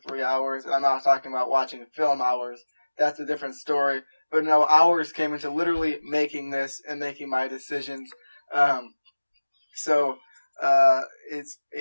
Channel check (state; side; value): inverted; both; correlation -1.00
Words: hours, and I'm not talking about watching film hours. That's a different story. But no, hours came into literally making this and making my decisions. So it's